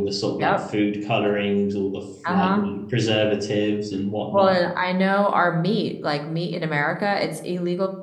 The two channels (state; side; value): identical; both; correlation 1.00